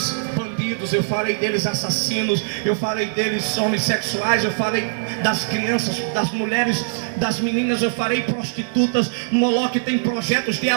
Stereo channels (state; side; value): silent; left; digital silence